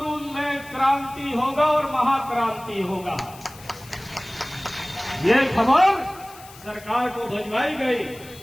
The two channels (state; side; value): noise; left; hiss, 20 dB below the sound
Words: में क्रांति होगा और महाक्रांति होगा। ये खबर सरकार को भिजवाई गई